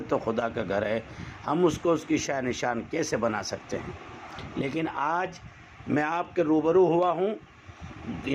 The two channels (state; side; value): identical; both; correlation 1.00